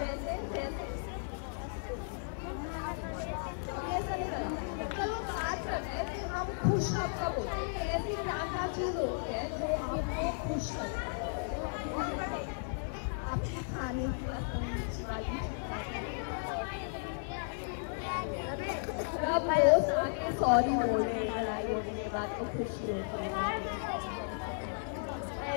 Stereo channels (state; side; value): silent; right; digital silence